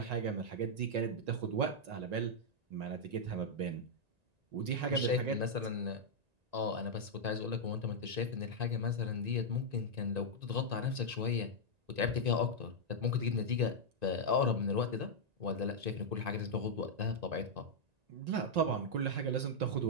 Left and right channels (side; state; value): left; late; 1.9 ms